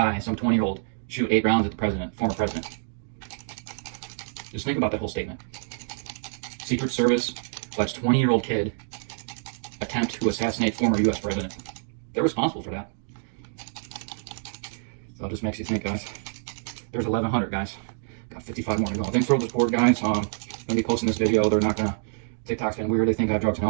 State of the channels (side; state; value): left; silent; digital silence